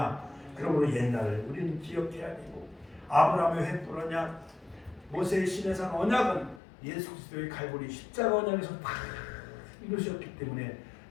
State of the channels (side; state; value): right; drops out; at 6.6 s